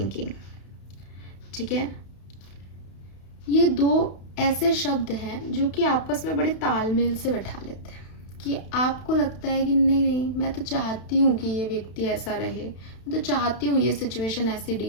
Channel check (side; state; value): right; late; 32 ms